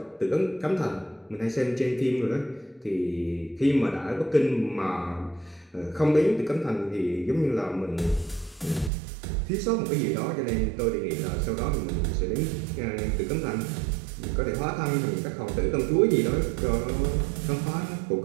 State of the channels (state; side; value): drops out; left; at 8.9 s